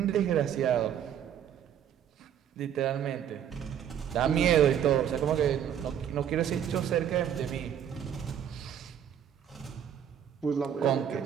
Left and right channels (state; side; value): quieter; left; 9.3 dB